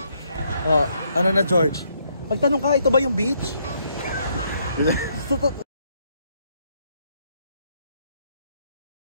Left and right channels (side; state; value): both; inverted; correlation -0.72